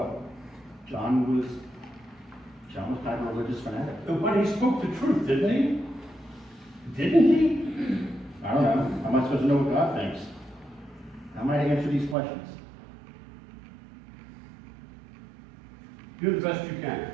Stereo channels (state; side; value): drops out; left; at 12.2 s